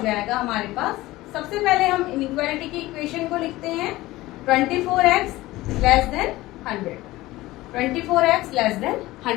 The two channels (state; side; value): quieter; right; 18.2 dB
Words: जाएगा हमारे पास, सबसे पहले हम इनइक्वालिटी की इक्वेशन को लिखते हैं 24x less than 100. 24x less than